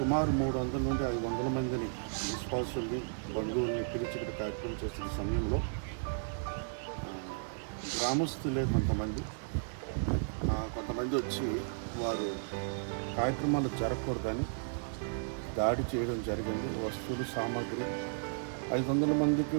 300 నుండి 500 మందిని విశ్వాసుల్ని బంధువుల్ని పిలిచి ఇక్కడ కార్యక్రమం చేస్తున్న సమయంలో గ్రామస్తులే కొంతమంది వచ్చి వారు కార్యక్రమాలు జరగకూడదని దాడి చేయడం జరిగింది. వస్తువులు సామాగ్రి 500 మందికి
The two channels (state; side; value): silent; left; digital silence